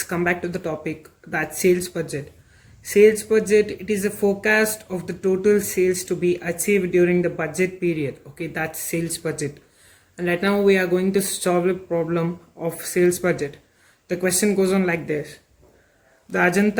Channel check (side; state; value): both; identical; correlation 1.00